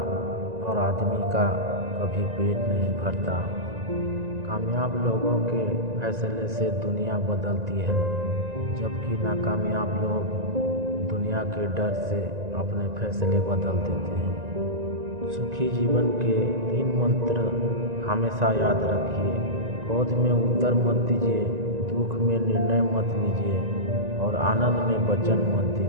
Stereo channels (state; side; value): late; left; 1.9 ms